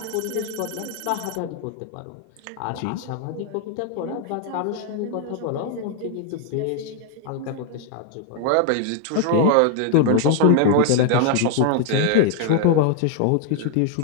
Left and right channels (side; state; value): both; different; correlation 0.00